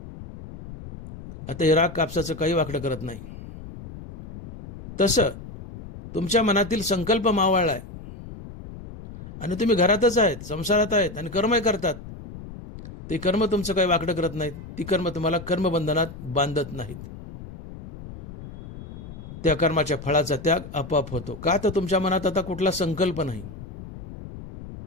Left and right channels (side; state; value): left; noise; rumble, 13 dB below the sound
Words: आता हे राख कापसाचं काही वाकडं करत नाही. तसं तुमच्या मनातील संकल्प मावळलाय आणि तुम्ही घरातच आहेत, संसारात आहेत आणि कर्मही करतात, ते कर्म तुमचं काही वाकडं करत नाहीत. ती कर्म तुम्हाला कर्मबंधनात बांधत नाहीत. त्या कर्माच्या फळाचा त्याग आपोआप होतो. का? तर तुमच्या मनात आता कुठला संकल्प नाही.